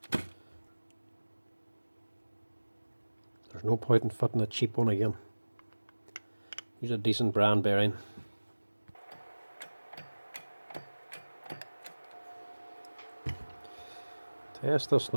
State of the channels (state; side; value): inverted; both; correlation -1.00